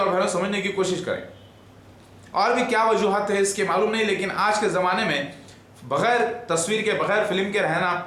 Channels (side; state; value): both; identical; correlation 1.00